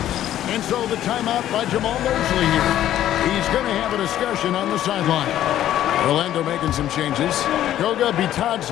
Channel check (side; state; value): right; quieter; 12.2 dB